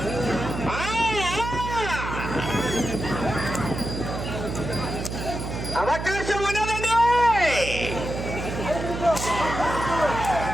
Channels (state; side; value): noise; right; hum, 6 dB below the sound